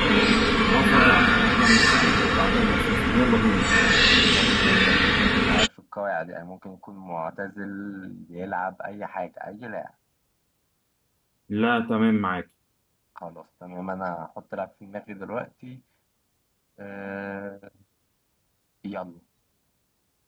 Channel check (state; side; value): identical; both; correlation 1.00